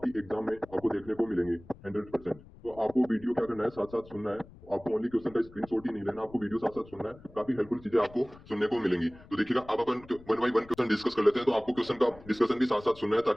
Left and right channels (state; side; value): noise; left; rumble, 21 dB below the sound